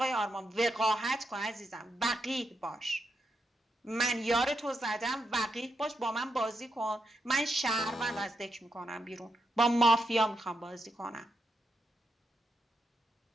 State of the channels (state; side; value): normal; both; correlation 0.83